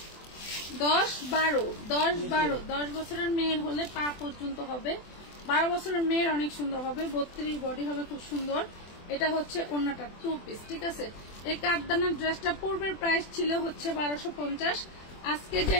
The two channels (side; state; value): right; late; 24 ms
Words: 10 বছরের মেয়ের হলে পা পর্যন্ত হবে, 12 বছরের মেয়ের অনেক সুন্দর হবে, 32 বডি হবে, খুব সুন্দর। এটা হচ্ছে ওন্নাটা 2 পিস, ঠিক আছে। এই কাঠদানার ড্রেসটা পূর্বের প্রাইস ছিল হচ্ছে 1250। আজকে যে